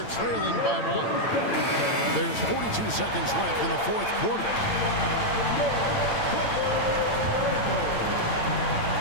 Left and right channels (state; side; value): late; right; 8.9 ms